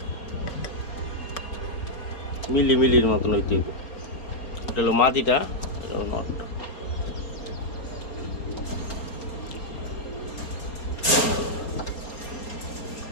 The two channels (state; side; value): late; right; 4.3 ms